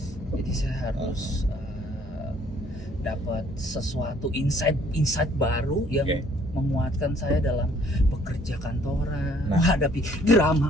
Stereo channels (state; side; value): normal; both; correlation 0.61